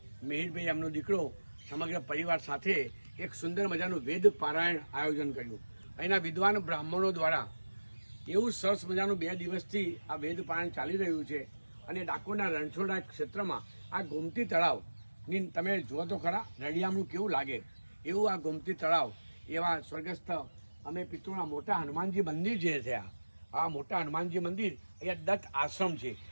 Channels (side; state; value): both; inverted; correlation -1.00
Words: મિહિરભાઈ એમનો દીકરો સમગ્ર પરિવાર સાથે એક સુંદર મજાનું વેદ પારાયણ આયોજન કર્યું। અહીંના વિદ્વાન બ્રાહ્મણો દ્વારા એવું સરસ મજાનું 2 દિવસથી આ વેદ પારાયણ ચાલી રહ્યું છે અને ડાકોરના રણછોડના ક્ષેત્રમાં આ ગોમતી તળાવ ની તમે જુઓ તો ખરા, રળિયામણું કેવું લાગે એવું આ ગોમતી તળાવ, એવા સ્વર્ગસ્થ અમે પિતૃના મોટા હનુમાનજી મંદિર જે થયા, આ મોટા હનુમાનજી મંદિર અહીંયા દત્ત આશ્રમ છે